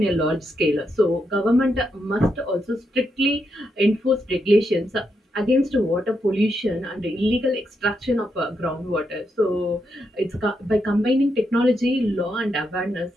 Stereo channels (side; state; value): both; normal; correlation 0.82